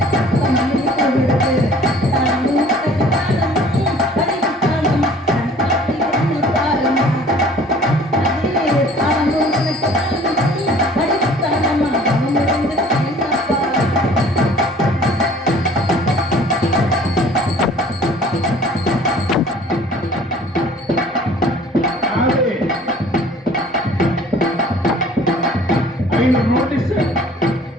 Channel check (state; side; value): normal; both; correlation 0.51